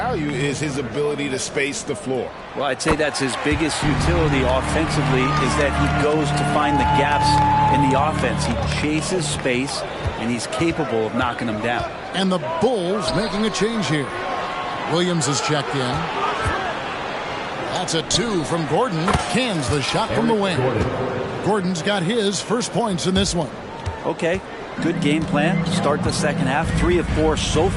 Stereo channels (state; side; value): identical; both; correlation 1.00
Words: is his ability to space the floor. Well, I'd say that's his biggest utility offensively is that he goes to find the gaps in the offense. He chases space, and he's capable of knocking them down. And the Bulls making a change here. Williams is checked in. That's a 2 from Gordon. Cans the shot from the wing. Gordon's got his first points in this one. Okay, good game plan. Start the second half. 3 of 4 so